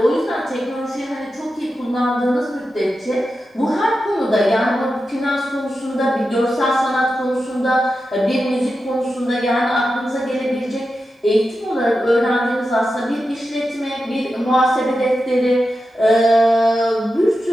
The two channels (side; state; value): both; normal; correlation 0.90